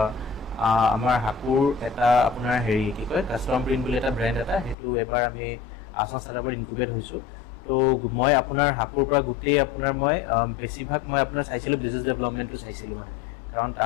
আমাৰ হাকুৰ এটা আপোনাৰ হেৰি কি কয় কাষ্টম প্ৰিণ্ট বুলি এটা ব্ৰেণ্ড এটা সেইটো এবাৰ আমি আসাম ষ্টাৰ্টআপত ইনকুবেট হৈছোঁ তো মই আপোনাৰ হাকুৰ পৰা গোটেই আপোনাৰ মই বেছিভাগ মই আপোনাৰ চাইছিলোঁ বিজনেছ ডেভেলপমেণ্টটো চাইছিলোঁ মানে কাৰণ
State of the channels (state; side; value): drops out; right; at 4.8 s